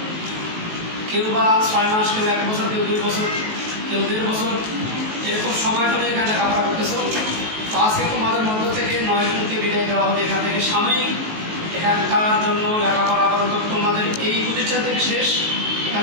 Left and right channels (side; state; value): left; late; 19 ms